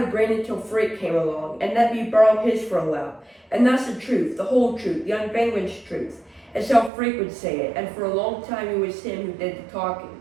a brain until Freak came along and let me borrow his for a while. And that's the truth, the whole truth, the unvanquished truth. It's how Freak would say it, and for a long time it was him who did the talking.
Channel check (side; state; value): left; drops out; at 6.9 s